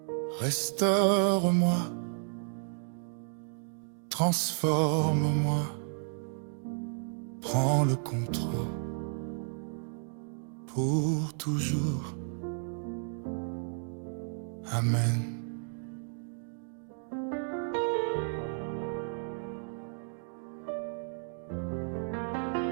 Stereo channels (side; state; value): left; silent; 56 dB below the other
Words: restaure-moi, transforme-moi, prends le contrôle pour toujours. Amen.